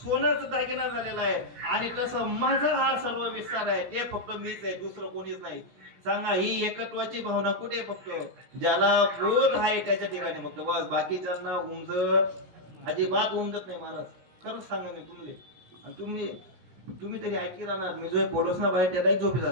सोनच दागिना झालेला आहे, आणि तसं माझा हा सर्व विस्तार आहे. ते फक्त मीच आहे, दुसरं कोणीच नाही. सांगा, ही एकत्वाची भावना कुठे? फक्त ज्याला बोध आहे त्याच्या ठिकाणी फक्त, बस. बाकीच्यांना अजिबात उमजत नाही महाराज. खरंच सांगा मी तुम्ही, आणि तुम्ही तरी ऐकी राहणार. मी जो बोलस ना बाहेर त्याला झोपी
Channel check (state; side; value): late; left; 17 ms